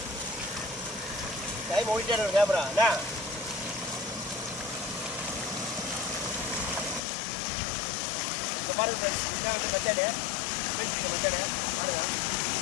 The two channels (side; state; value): right; drops out; at 7.0 s